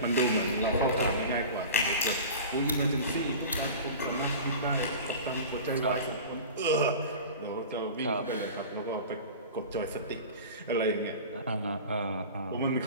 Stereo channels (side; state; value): both; inverted; correlation -0.35